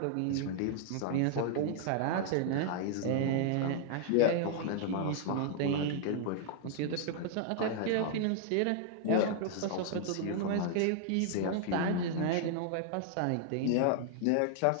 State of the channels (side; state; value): both; different; correlation -0.01